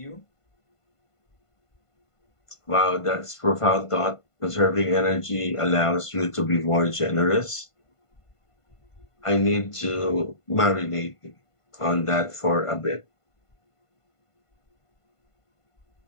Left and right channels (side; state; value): right; late; 1.5 ms